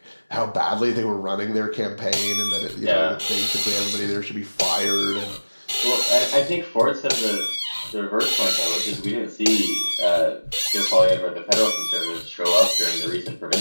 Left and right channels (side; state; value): both; inverted; correlation -1.00